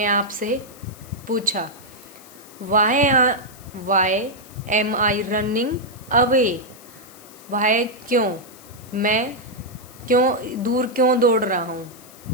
आप से पूछा, वाई एम आई रनिंग अवे, वाई क्यों, मैं दूर क्यों दौड़ रहा हूँ।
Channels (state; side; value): noise; left; hiss, 21 dB below the sound